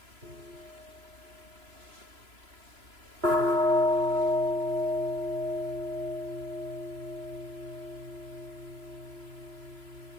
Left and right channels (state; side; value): late; left; 3.0 ms